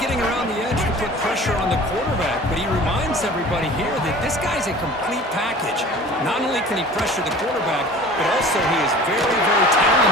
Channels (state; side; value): normal; both; correlation 0.43